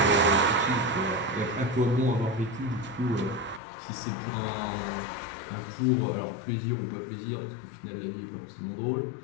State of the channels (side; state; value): right; drops out; at 3.6 s